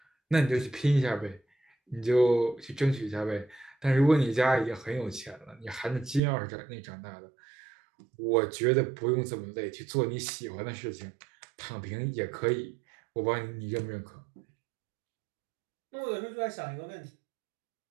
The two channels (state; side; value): drops out; left; at 6.2 s